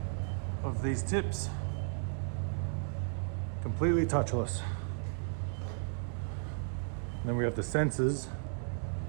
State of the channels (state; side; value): silent; left; digital silence